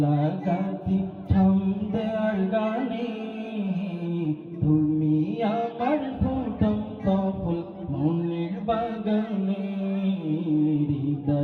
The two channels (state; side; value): identical; both; correlation 1.00